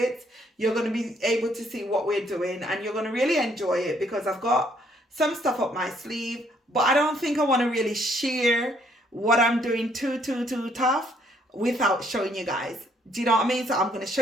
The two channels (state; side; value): normal; both; correlation 0.68